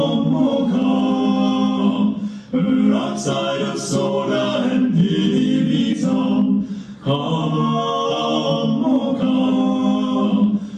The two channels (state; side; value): identical; both; correlation 1.00